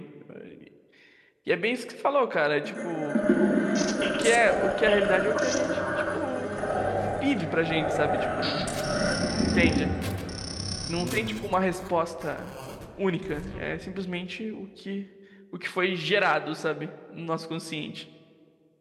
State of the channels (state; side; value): identical; both; correlation 1.00